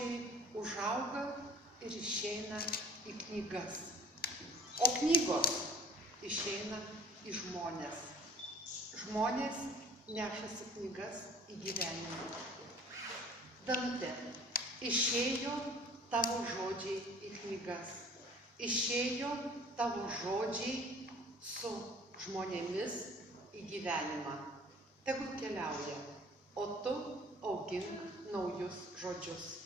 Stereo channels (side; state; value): both; normal; correlation 0.48